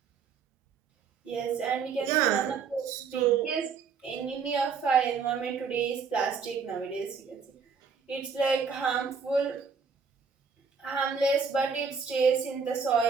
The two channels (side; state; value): left; quieter; 5.7 dB